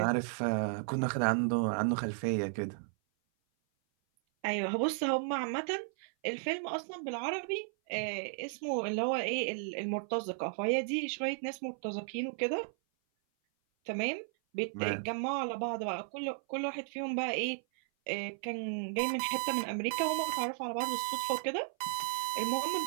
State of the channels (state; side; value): silent; left; 55 dB below the other